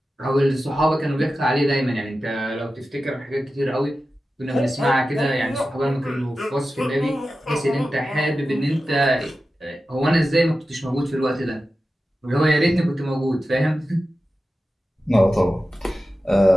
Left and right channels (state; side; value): normal; both; correlation 0.93